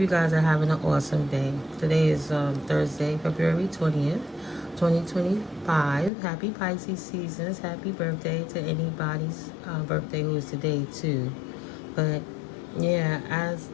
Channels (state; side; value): drops out; right; at 6.1 s